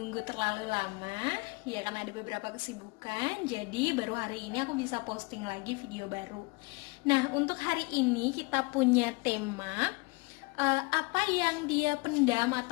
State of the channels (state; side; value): quieter; right; 27.5 dB